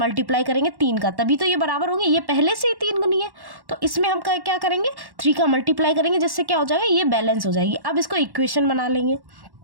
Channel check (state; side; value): late; left; 1.1 ms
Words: करेंगे 3 का, तभी तो ये बराबर होंगे। ये पहले से ही 3 गुनी है तो इसमें हम क्या करेंगे, 3 का मल्टीप्लाई करेंगे, जिससे क्या हो जाएगा, ये बैलेंस हो जाएगी। अब इसको इक्वेशन बना लेंगे।